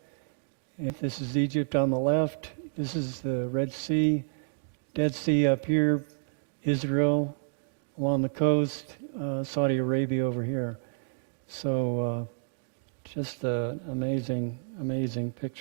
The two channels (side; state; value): left; silent; digital silence